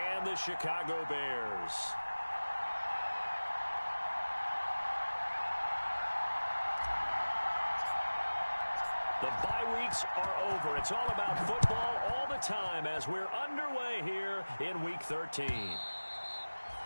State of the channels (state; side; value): inverted; both; correlation -1.00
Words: the Chicago Bears. The bye weeks are over. It's all about football all the time as we're underway here in Week 13.